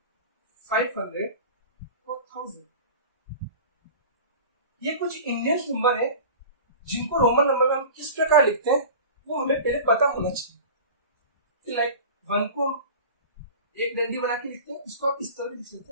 500 और 1000। ये कुछ इंडियन नंबर है जिनको रोमन नंबर में हम किस प्रकार लिखते हैं वो हमें पहले पता होना चाहिए। लाइक 1 को एक डंडी बना के लिखते हैं, इसको आप इस तरह लिख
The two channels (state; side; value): inverted; both; correlation -0.36